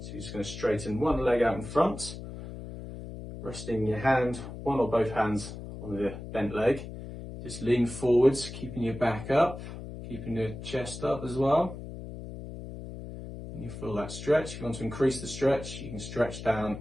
So you're just going to straighten one leg out in front, resting your hand, one or both hands on the bent leg. Just lean forwards, keeping your back up, keeping your chest up as well. And you feel that stretch. If you want to increase the stretch, you can stretch down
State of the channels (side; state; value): left; noise; hum, 10 dB below the sound